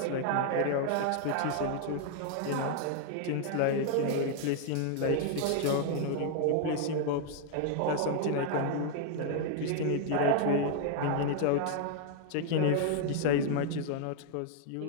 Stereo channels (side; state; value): both; different; correlation 0.00